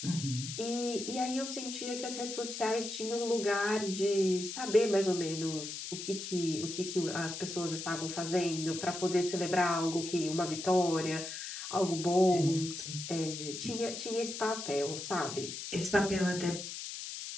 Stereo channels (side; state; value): left; noise; hiss, 7 dB below the sound